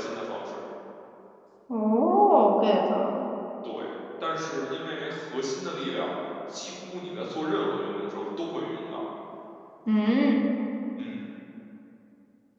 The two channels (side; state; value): both; identical; correlation 1.00